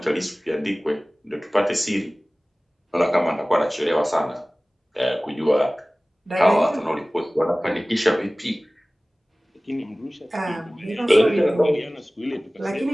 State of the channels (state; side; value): normal; both; correlation 0.98